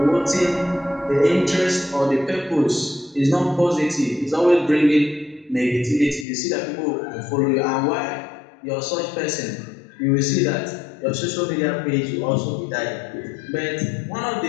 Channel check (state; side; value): drops out; right; at 6.2 s